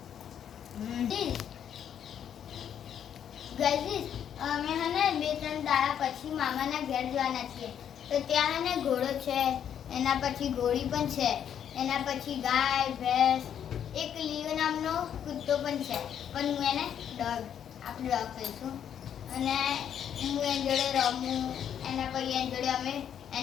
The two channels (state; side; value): quieter; right; 9.1 dB